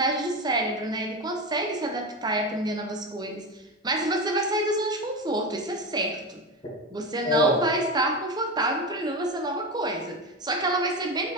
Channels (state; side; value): normal; both; correlation 0.20